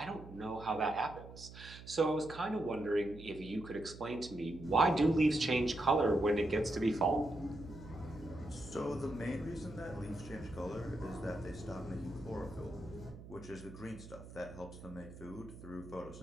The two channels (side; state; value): right; noise; hum, 15 dB below the sound